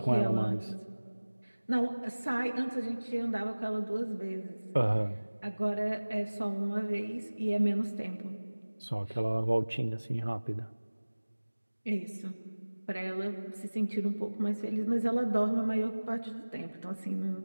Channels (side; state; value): both; inverted; correlation -1.00